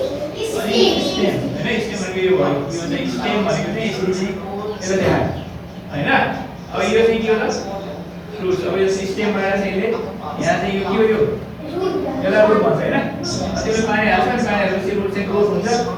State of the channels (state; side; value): identical; both; correlation 1.00